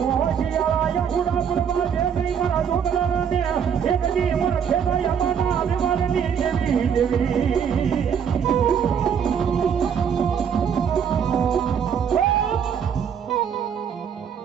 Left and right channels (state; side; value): quieter; left; 7.6 dB